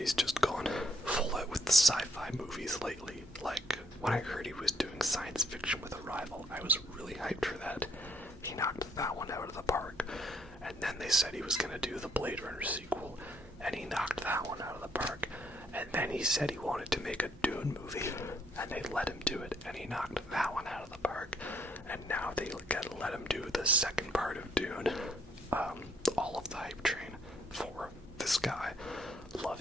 just gone full out with the sci-fi movies lately. Like, when I heard he was doing science fiction with Arrival, I was really hyped for that. He knocked that one out of the park. And then they said he was going to do the Blade Runner sequel, and he knocked that one out of the park. And then he said he wanted to make a Dune movie, and they let him do it, and he knocked that one out of the park. And now they let him do the second part of Dune. All of the hype train for this guy. Love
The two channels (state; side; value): normal; both; correlation 0.68